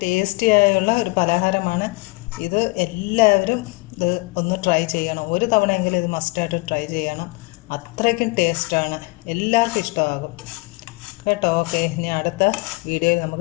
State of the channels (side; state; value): right; quieter; 26.0 dB